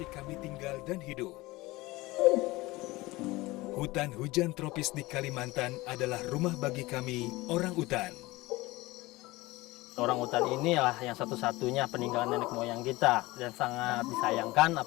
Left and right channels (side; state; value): right; quieter; 20.5 dB